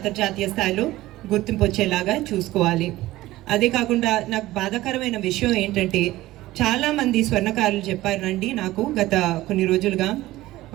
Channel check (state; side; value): quieter; left; 16.9 dB